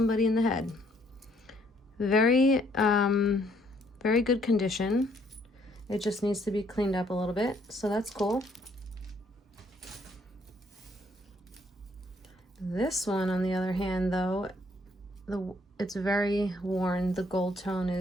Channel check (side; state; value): both; normal; correlation 0.66